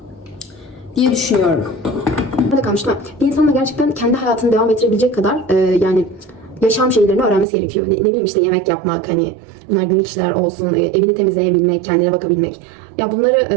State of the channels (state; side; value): drops out; left; at 7.5 s